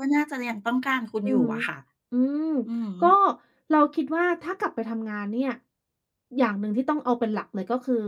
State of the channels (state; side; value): identical; both; correlation 1.00